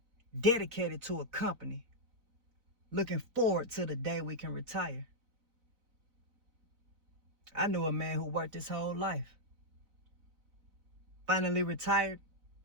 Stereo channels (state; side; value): late; left; 4.0 ms